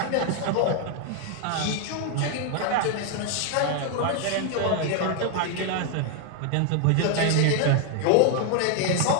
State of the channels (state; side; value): different; both; correlation 0.00